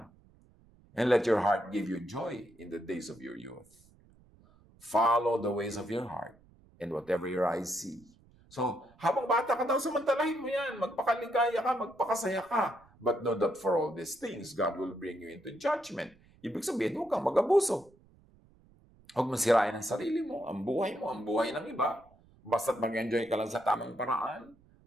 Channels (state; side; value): noise; right; rumble, 28 dB below the sound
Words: and let your heart give you joy in the days of your youth. Follow the ways of your heart, and whatever your eyes see. So, habang bata ka daw, samantalahin mo yan. Magpakaligaya ka, magpakasaya ka. But know that for all these things, God will bring you into judgment. Ibig sabihin, huwag kang mag-abuso. Huwag mong sirain ang sarili mo, ang buhay ng iba. Basta't mag-enjoy ka lang sa tamang paraan,